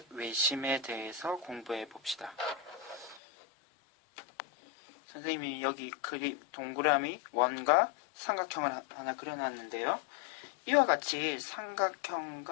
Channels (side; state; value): right; drops out; at 3.2 s